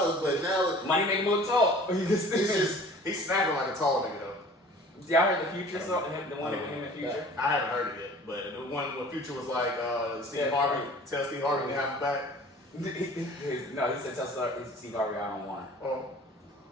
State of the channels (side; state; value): both; normal; correlation 0.47